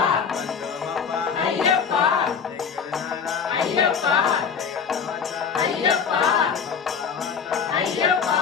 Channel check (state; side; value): quieter; right; 6.5 dB